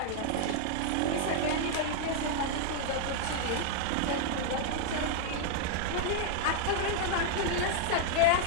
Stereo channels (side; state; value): both; different; correlation 0.00